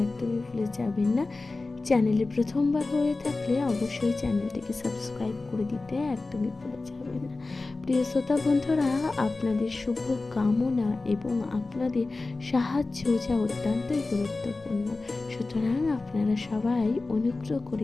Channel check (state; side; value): quieter; right; 3.4 dB